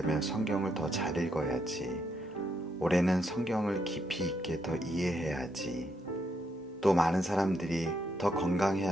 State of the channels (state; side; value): normal; both; correlation 0.78